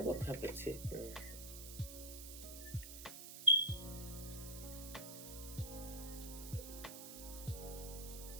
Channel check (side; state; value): right; noise; hiss, 10 dB below the sound